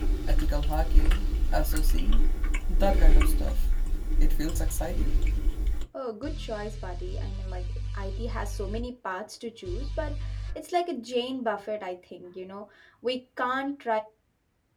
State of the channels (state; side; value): identical; both; correlation 1.00